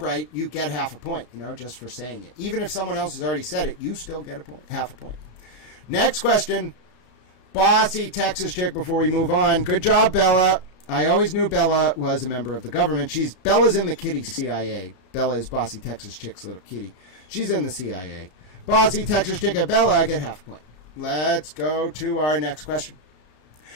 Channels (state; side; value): late; right; 33 ms